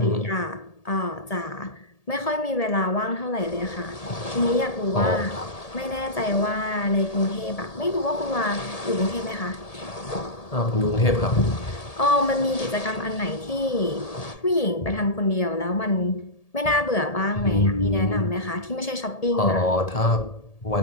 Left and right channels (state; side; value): late; right; 1.8 ms